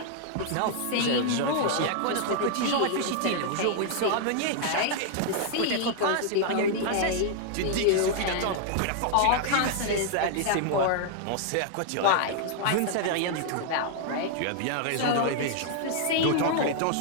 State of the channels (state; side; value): different; both; correlation 0.00